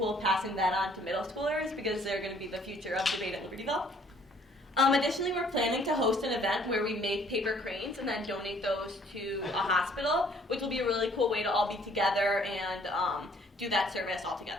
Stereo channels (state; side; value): normal; both; correlation 0.60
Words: passing that on to middle schoolers because they're going to be the future of debate at Libertyville. Additionally, we're planning to host an event where we make paper cranes and then donate those to a hospital, which will be a really cool way to all be together and do that service all